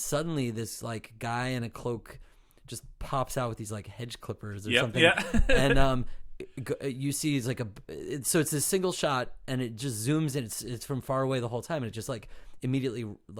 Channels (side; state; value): both; identical; correlation 1.00